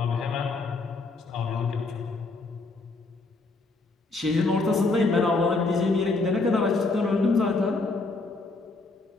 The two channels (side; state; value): right; quieter; 3.5 dB